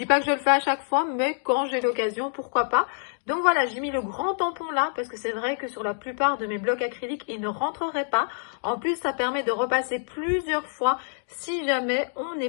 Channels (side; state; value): right; silent; digital silence